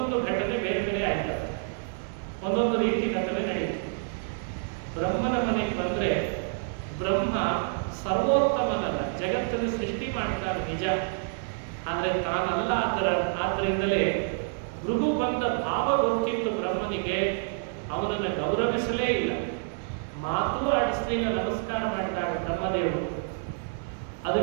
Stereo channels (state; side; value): silent; left; 59 dB below the other